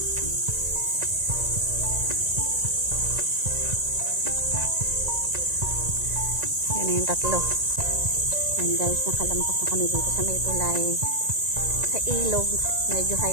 Yan na yung tatlo. Yan guys, nakalampas na kami dito sa may tulay. Sa ilog, medyo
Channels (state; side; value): late; left; 1.9 ms